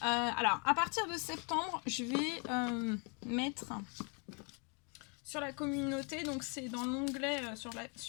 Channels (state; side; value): quieter; right; 35.4 dB